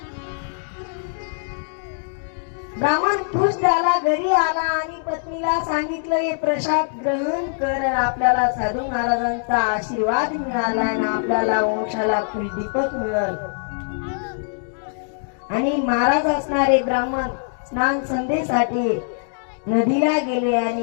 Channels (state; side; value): silent; right; digital silence